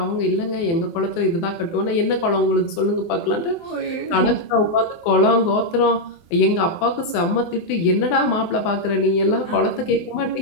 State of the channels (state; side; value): late; right; 24 ms